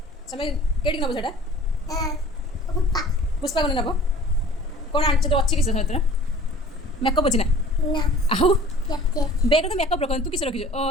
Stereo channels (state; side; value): normal; both; correlation 0.47